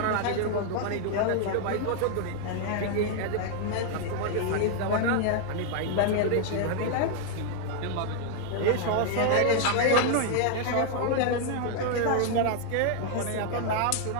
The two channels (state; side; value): different; both; correlation 0.00